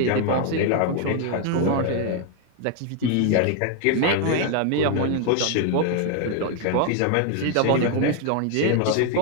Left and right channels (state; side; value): different; both; correlation 0.00